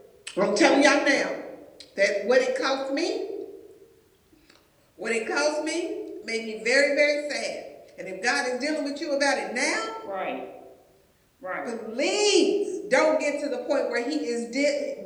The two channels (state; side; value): identical; both; correlation 1.00